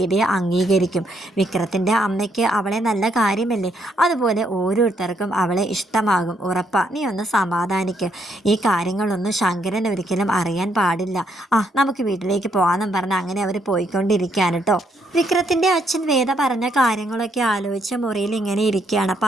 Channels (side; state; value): both; normal; correlation 0.74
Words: അംഗീകരിക്കും. വിക്രത്തിൻ്റെ അമ്മയ്ക്ക് അവളെ നല്ല കാര്യമല്ലേ, അതുപോലെ ഓരോരുത്തർക്കും അവളെ ഇഷ്ടമാകും. ഉറപ്പാ, നീ ഒന്ന് സമാധാനിക്ക്. ഈ കാര്യങ്ങളൊന്നും ശങ്കരൻ ഒരിക്കലും അറിയാൻ പാടില്ല. നമുക്ക് വീട്ടിലേക്ക് പോകാമെന്നും പറഞ്ഞ് അങ്ങനെ അവർ പോയിക്കൊണ്ടിരിക്കുകയാണ് കേട്ടോ. വിക്രത്തിൻ്റെ അച്ഛൻ വേദ പറഞ്ഞ കാര്യങ്ങളൊക്കെ ആലോചിച്ച് മുറിയിൽ ഇങ്ങനെ ഇരിക്കുകയാണ്.